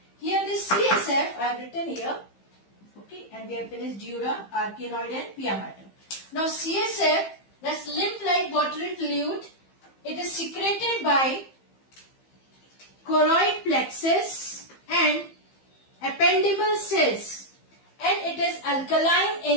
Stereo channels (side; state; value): right; late; 15 ms